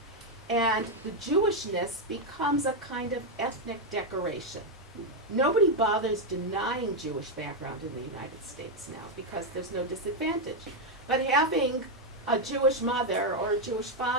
And the Jewishness becomes a kind of ethnic decoration. Nobody bothers denying Jewish background in the United States now because there's no disadvantage. But having a Jewish mother or a Jewish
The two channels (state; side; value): normal; both; correlation 0.02